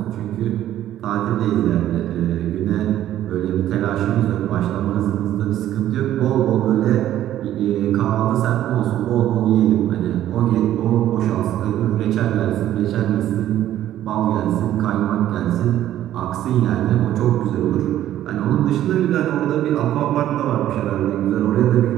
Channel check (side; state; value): left; quieter; 12.5 dB